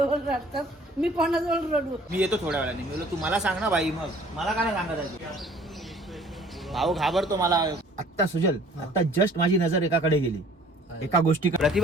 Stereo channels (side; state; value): both; normal; correlation 0.53